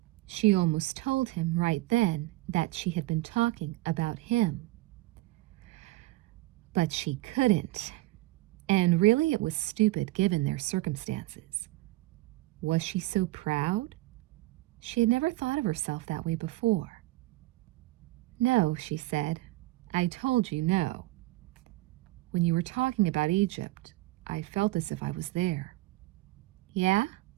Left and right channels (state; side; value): quieter; left; 19.0 dB